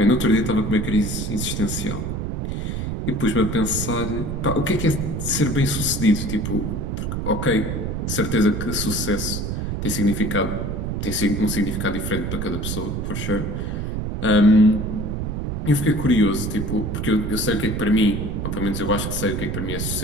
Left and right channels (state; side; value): noise; right; rumble, 3 dB below the sound